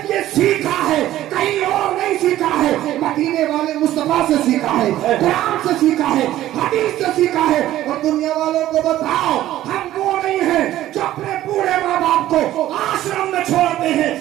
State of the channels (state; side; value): quieter; left; 13.9 dB